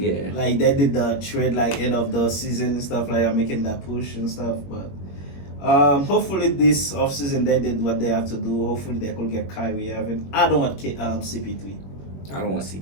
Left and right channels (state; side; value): late; right; 21 ms